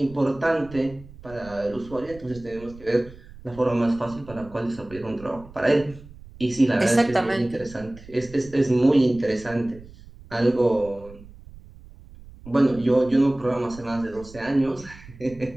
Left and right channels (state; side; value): noise; right; rumble, 19 dB below the sound